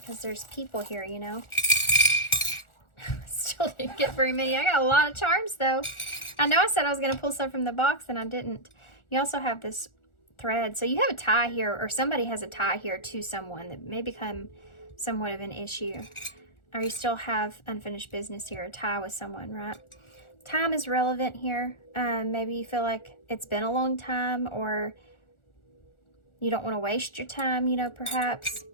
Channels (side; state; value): right; late; 1.4 ms